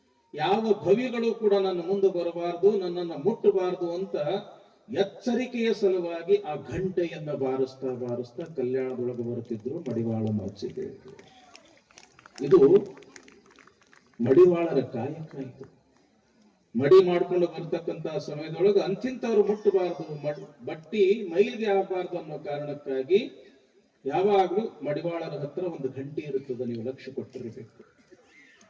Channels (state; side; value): identical; both; correlation 1.00